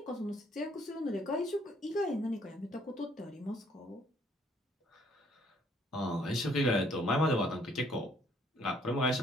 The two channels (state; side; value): normal; both; correlation 0.64